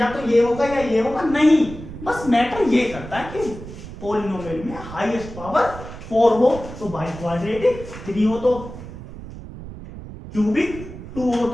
तो ये होगा या ये होगा, नहीं, बस मैटर ये करता है कि पॉलिनोमियल में हाईएस्ट पावर 4 हो तो बाई क्वाड्रेटिक, 3 हो तो क्यूबिक, 2 हो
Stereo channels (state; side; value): noise; right; rumble, 13 dB below the sound